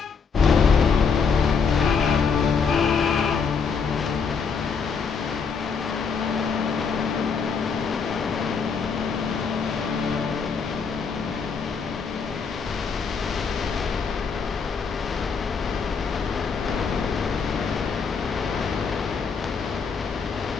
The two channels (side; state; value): right; quieter; 5.6 dB